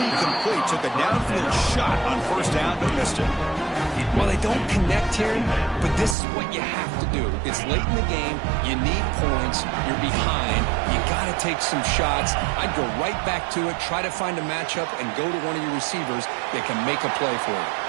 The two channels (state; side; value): drops out; left; at 6.2 s